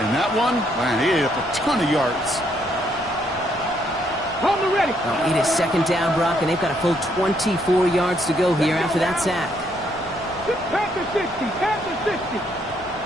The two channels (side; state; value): left; noise; rumble, 21 dB below the sound